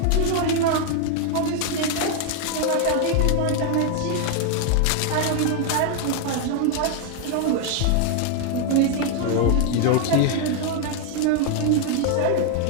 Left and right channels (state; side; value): different; both; correlation 0.00